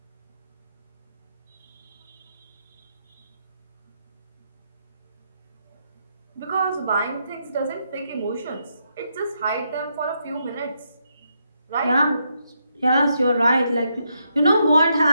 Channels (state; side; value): inverted; both; correlation -0.79